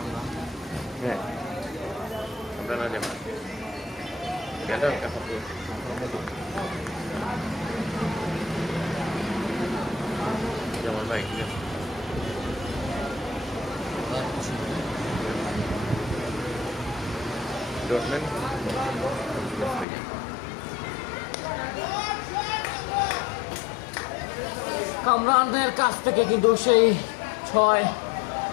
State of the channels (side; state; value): right; drops out; at 19.9 s